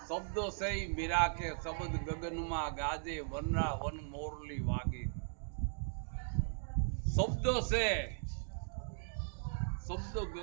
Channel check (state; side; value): silent; left; digital silence